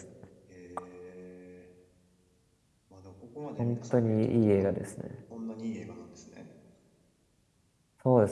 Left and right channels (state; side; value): identical; both; correlation 1.00